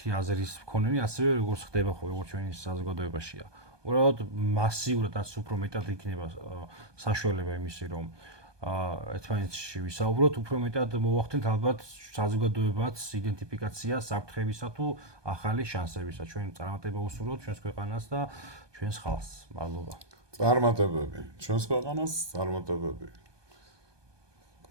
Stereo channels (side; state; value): left; late; 1.2 ms